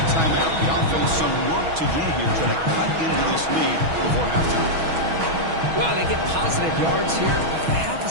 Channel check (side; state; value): left; late; 6.2 ms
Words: timeout. The offense some work to do here, trying to cut into this lead before halftime. Well, they get positive yards here. I have